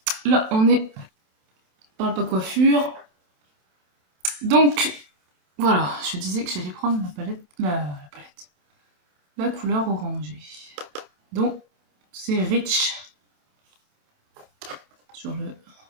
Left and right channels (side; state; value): left; late; 27 ms